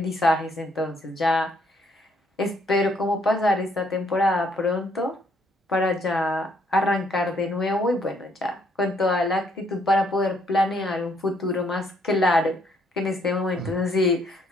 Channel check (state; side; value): normal; both; correlation 0.69